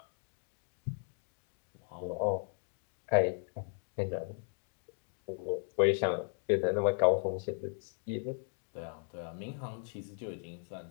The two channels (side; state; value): right; silent; 53 dB below the other